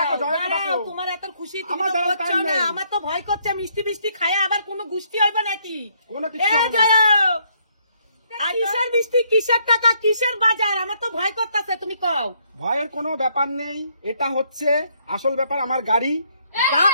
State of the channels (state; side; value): inverted; both; correlation -0.70